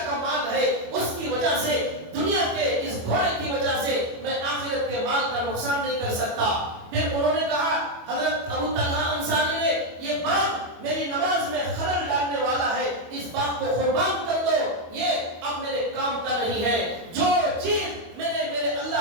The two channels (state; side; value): late; left; 25 ms